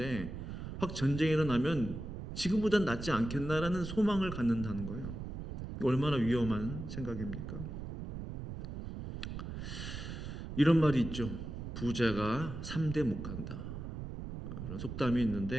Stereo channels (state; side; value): noise; right; rumble, 7 dB below the sound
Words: 확 전쟁이 일어나면 지금보단 낫지 않겠나라는 소망을 갖는다는 거예요. 얼마나 위험한 생각입니까? 이런 말이 있죠. 부자가 3대 못 간다. 이런 속담이